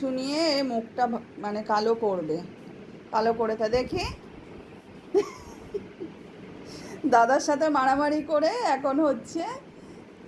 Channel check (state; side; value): identical; both; correlation 1.00